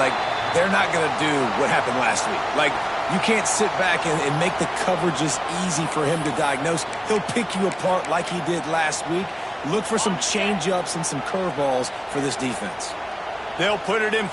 they're not going to do what happened last week. Like, you can't sit back and make the coverages easy for him to diagnose. He'll pick you apart like he did last week. Look for some change-ups and some curveballs for this defense. They'll put it in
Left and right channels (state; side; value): identical; both; correlation 1.00